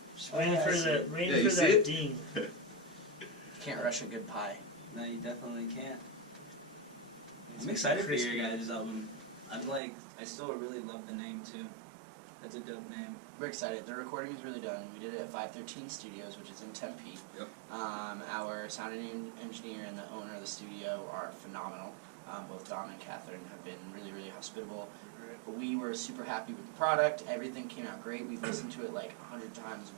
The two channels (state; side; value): drops out; left; at 9.8 s